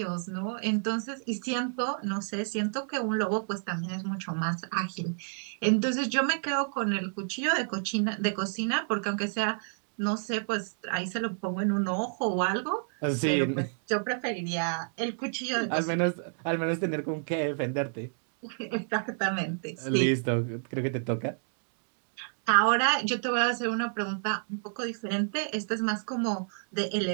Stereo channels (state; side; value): silent; left; digital silence